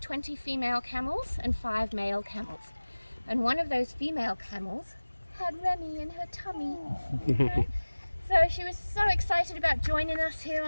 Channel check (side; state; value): both; inverted; correlation -1.00